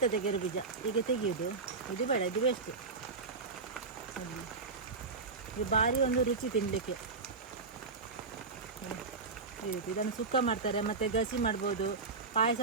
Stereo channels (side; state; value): left; quieter; 4.3 dB